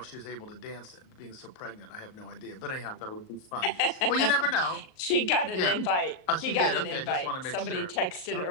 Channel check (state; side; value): late; right; 38 ms